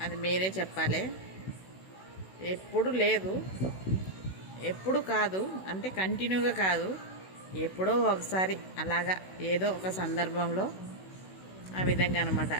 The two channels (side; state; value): right; late; 16 ms